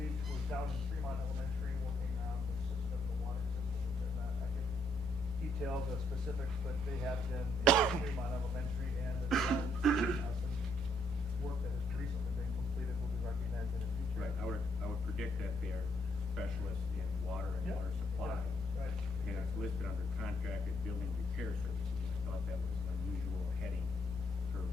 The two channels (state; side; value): normal; both; correlation 0.72